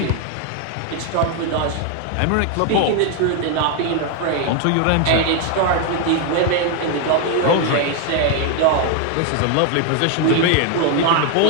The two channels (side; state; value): both; different; correlation 0.00